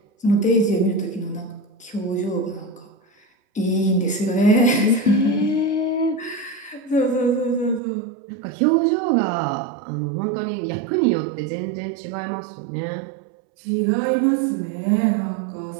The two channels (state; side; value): drops out; left; at 7.8 s